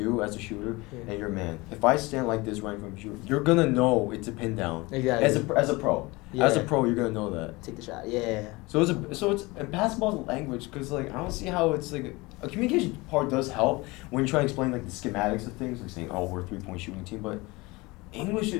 You as a shooter Yeah. and your man. If I stand like this right in front of you, you're gonna know it's a pin down. Exactly. As a pro, Yeah. as a pro, you're gonna know that. Take the shot. Yeah. So it's basketball's a language because like I don't see how it's like a communication part does help when you try to explain like the schematics of things, like saying, oh, we're a 3-point shooting team, but English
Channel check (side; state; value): right; quieter; 23.2 dB